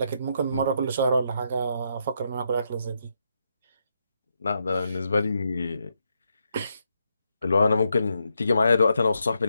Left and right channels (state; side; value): inverted; both; correlation -0.80